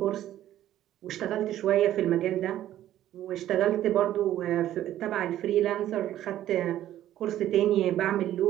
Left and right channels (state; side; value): quieter; left; 12.7 dB